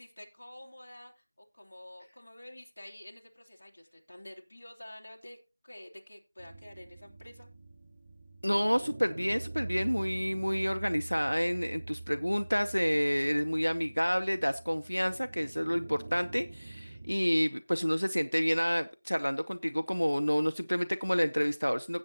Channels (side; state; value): both; inverted; correlation -1.00